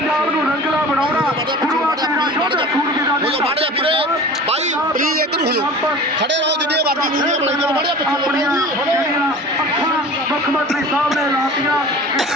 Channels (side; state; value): both; normal; correlation 0.39